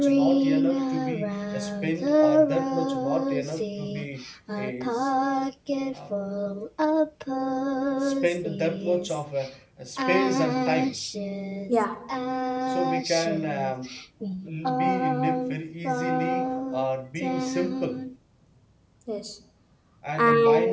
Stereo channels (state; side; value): identical; both; correlation 1.00